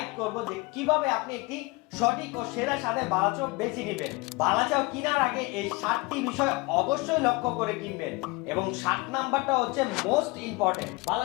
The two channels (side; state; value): right; quieter; 24.6 dB